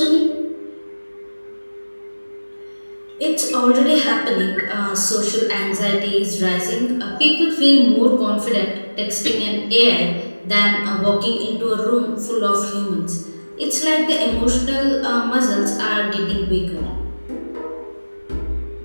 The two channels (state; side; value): inverted; both; correlation -1.00